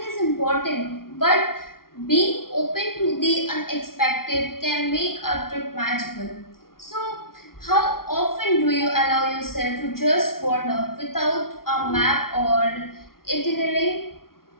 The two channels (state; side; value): late; right; 0.93 ms